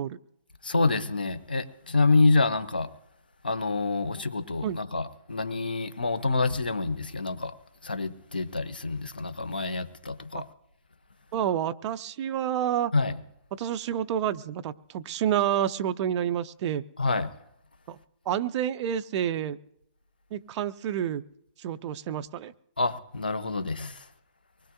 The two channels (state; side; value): inverted; both; correlation -0.61